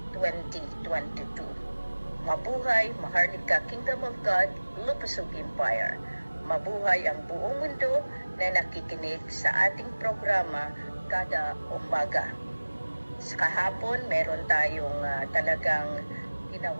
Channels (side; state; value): both; inverted; correlation -1.00